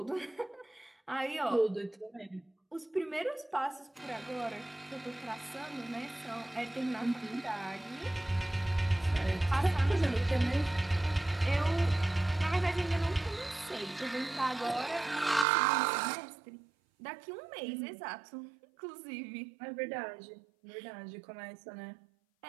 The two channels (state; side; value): drops out; left; at 15.5 s